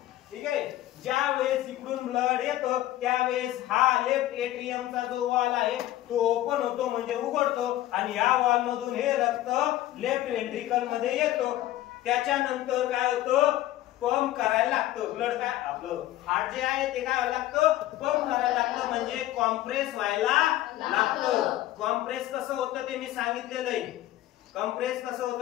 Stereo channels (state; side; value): quieter; right; 14.6 dB